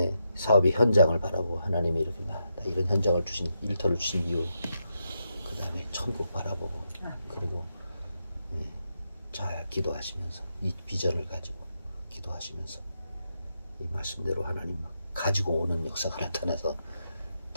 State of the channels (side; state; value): both; inverted; correlation -0.84